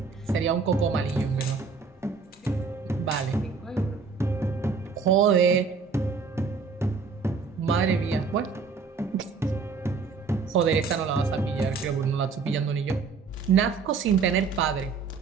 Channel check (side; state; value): left; quieter; 5.0 dB